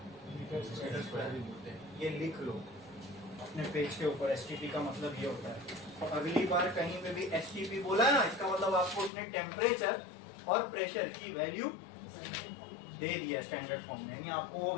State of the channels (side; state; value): right; drops out; at 9.1 s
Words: मीटर स्क्वायर भी बोलते हैं। ये लिख लो अपने पेज के ऊपर, STP का मतलब ये होता है। तो अगली बार कहीं पे भी STP बोला है ना, इसका मतलब आपको उसने टेम्परेचर और प्रेशर की वैल्यू दे दिया स्टैंडर्ड फॉर्म में, यानी आपको वो